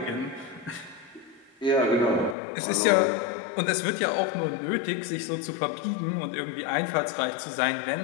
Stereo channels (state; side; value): drops out; right; at 2.4 s